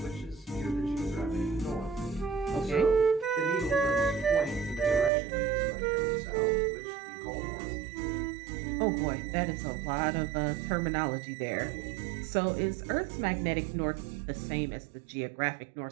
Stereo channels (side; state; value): left; drops out; at 5.1 s